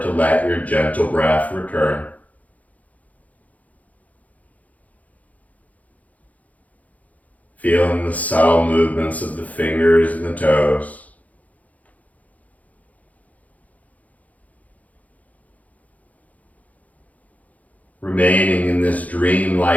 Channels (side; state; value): right; late; 0.073 ms